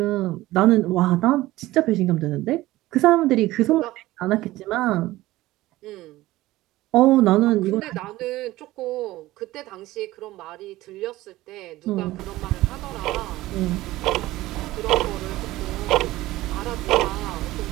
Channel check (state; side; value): quieter; left; 17.3 dB